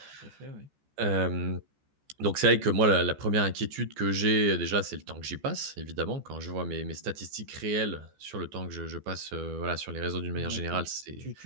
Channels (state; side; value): late; left; 14 ms